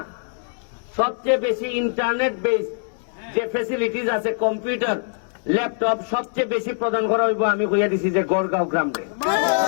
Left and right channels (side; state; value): right; silent; digital silence